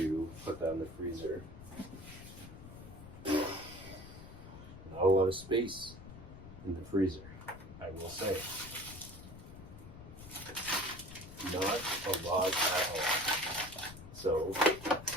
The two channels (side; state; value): left; noise; rumble, 15 dB below the sound